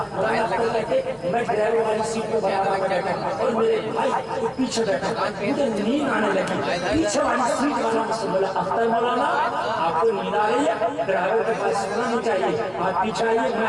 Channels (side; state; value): both; identical; correlation 1.00